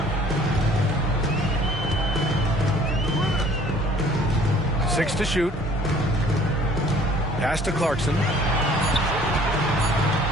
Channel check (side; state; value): both; normal; correlation 0.54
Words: 6 to shoot. Pass to Clarkson.